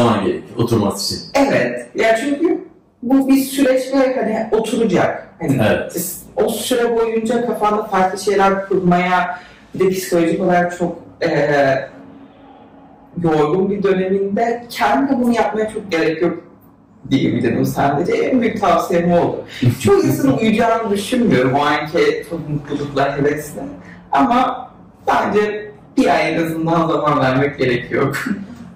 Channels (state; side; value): identical; both; correlation 1.00